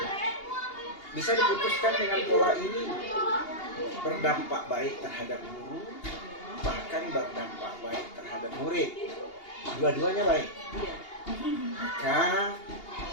bisa diputuskan dengan pola ini, berdampak baik terhadap guru, bahkan berdampak baik terhadap murid. Dua-duanya baik. Maka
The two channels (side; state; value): right; late; 2.8 ms